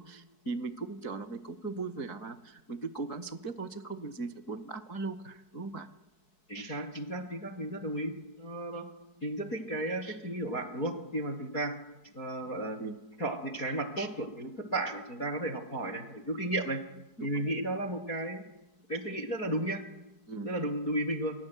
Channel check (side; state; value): right; late; 4.7 ms